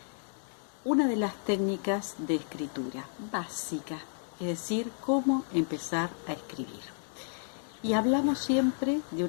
una de las técnicas de escritura básica, es decir, cómo empezar a escribir. Y hablamos siempre de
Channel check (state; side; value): silent; right; digital silence